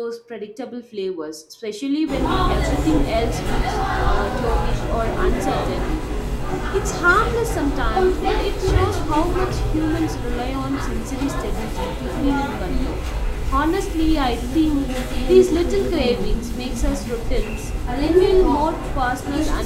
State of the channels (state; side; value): identical; both; correlation 1.00